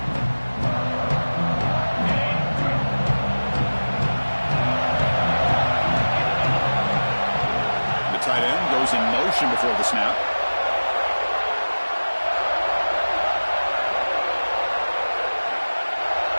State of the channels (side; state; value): both; inverted; correlation -1.00